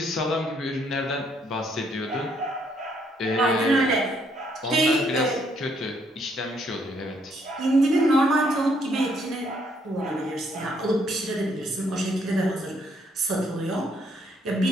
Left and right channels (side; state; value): both; normal; correlation 0.70